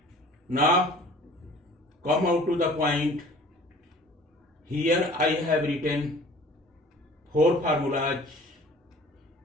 Now come out to the point. Here I have written 4 formulas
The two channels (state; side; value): normal; both; correlation 0.48